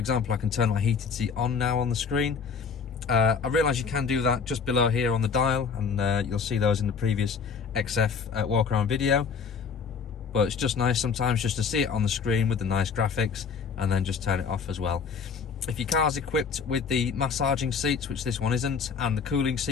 I can turn my heated seat on now on the screen. I realise you can do that just below here on the dial, and you'll see those in the previous XF walk around video. But it's just nice sometimes just to see it on the screen with the nice graphics and then just turn it off as well. If your car's equipped with the massaging seats, which this one isn't, and the cooling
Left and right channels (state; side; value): quieter; right; 5.8 dB